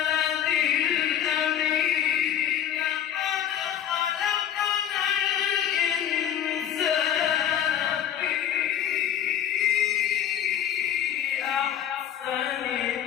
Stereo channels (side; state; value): right; quieter; 10.0 dB